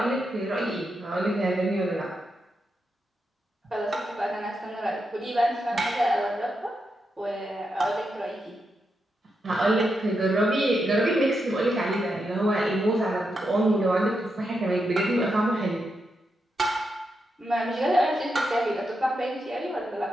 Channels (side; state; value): both; normal; correlation 0.85